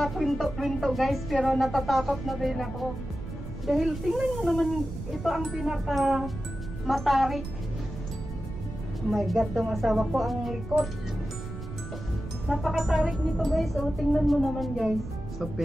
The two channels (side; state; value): right; noise; rumble, 9 dB below the sound